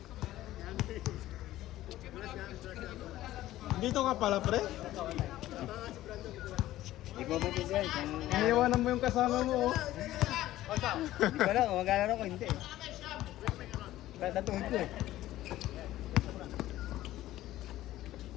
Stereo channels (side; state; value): right; quieter; 14.9 dB